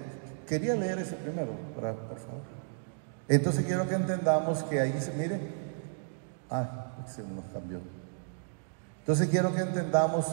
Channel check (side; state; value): left; silent; digital silence